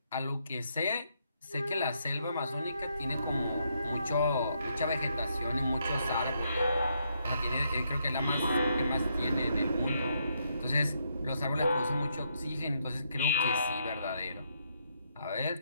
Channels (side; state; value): both; inverted; correlation -0.76